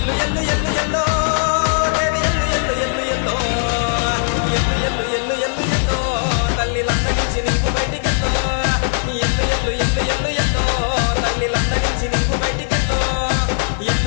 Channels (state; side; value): silent; right; 67 dB below the other